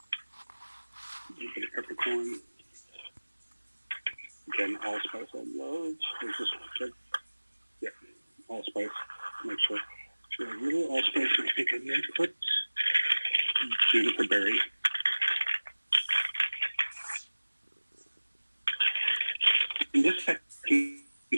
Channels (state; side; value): inverted; both; correlation -1.00